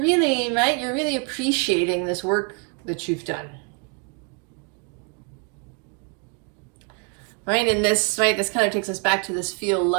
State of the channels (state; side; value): quieter; left; 36.2 dB